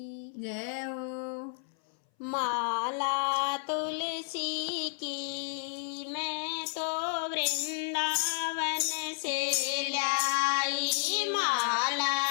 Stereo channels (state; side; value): silent; right; 57 dB below the other